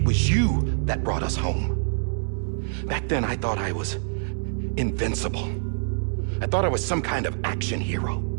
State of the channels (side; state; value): left; silent; 58 dB below the other